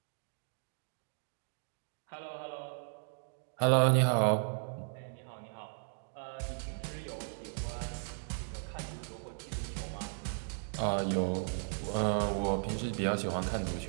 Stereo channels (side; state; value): left; silent; digital silence